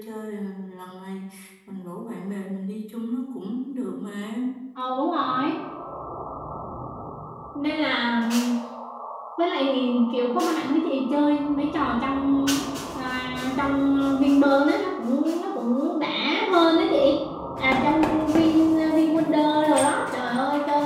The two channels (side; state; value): both; identical; correlation 1.00